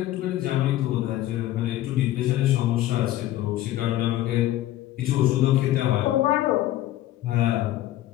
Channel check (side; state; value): right; quieter; 14.5 dB